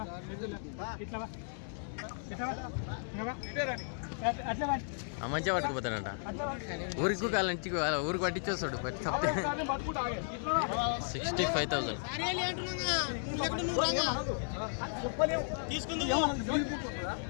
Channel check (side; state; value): right; silent; digital silence